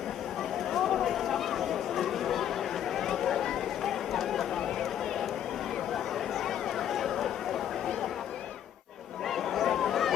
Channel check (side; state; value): right; quieter; 10.2 dB